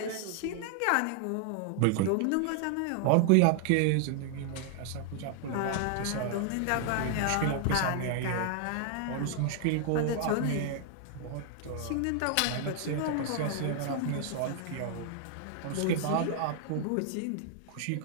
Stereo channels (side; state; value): both; different; correlation 0.00